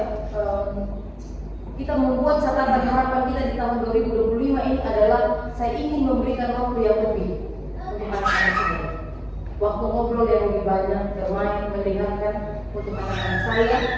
kita membuat catatan harapan kita di tahun 2025 ini adalah saya ingin memberikan waktu yang lebih untuk anak-anak saya. Waktu ngobrol yang lebih banyak, bermain, mendengarkan untuk anak-anak saya,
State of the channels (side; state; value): both; identical; correlation 1.00